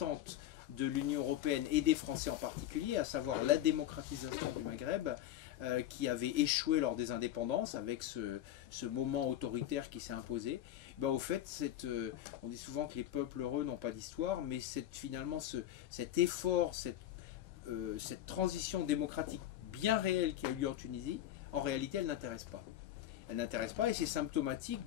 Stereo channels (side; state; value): right; quieter; 12.3 dB